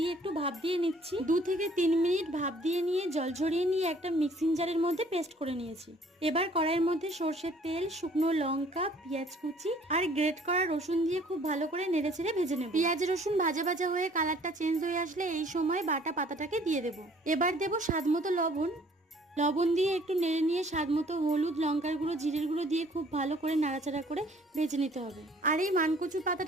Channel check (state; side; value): normal; both; correlation 0.57